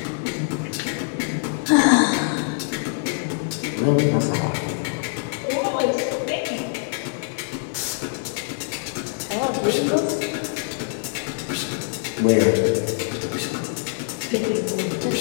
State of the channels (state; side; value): silent; right; 63 dB below the other